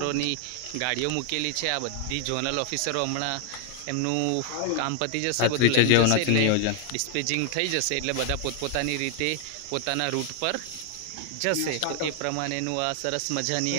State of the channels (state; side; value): different; both; correlation 0.00